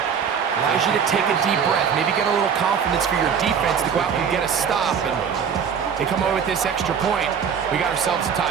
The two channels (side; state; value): left; quieter; 7.1 dB